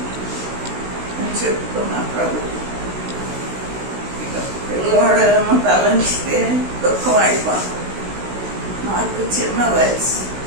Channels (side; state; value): left; late; 16 ms